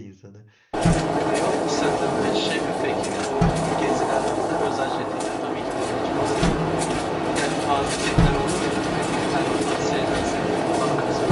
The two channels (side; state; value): both; identical; correlation 1.00